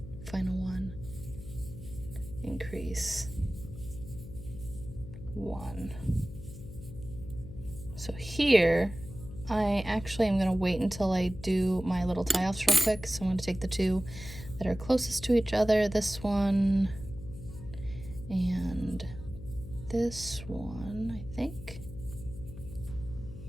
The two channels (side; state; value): left; noise; hum, 13 dB below the sound